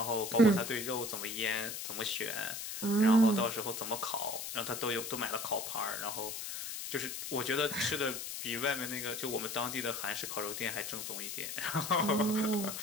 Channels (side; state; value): left; noise; hiss, 6 dB below the sound